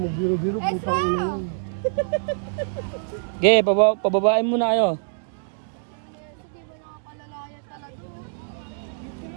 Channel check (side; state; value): left; silent; digital silence